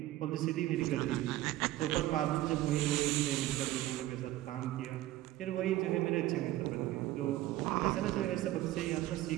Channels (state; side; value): quieter; left; 15.5 dB